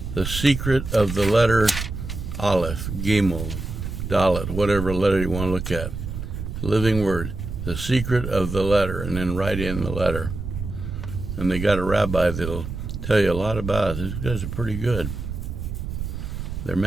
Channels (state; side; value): noise; right; rumble, 6 dB below the sound